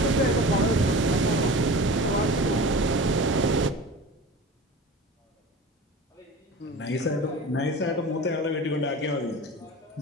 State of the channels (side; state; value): both; normal; correlation 0.35